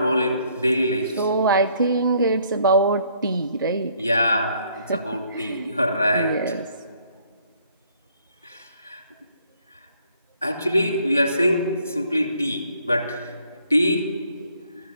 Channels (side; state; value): both; inverted; correlation -0.65